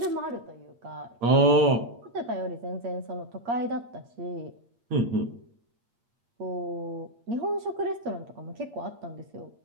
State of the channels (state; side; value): late; left; 8.6 ms